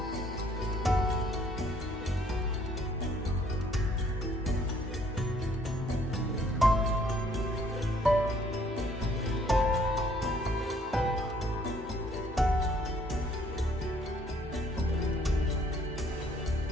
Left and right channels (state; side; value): normal; both; correlation 0.63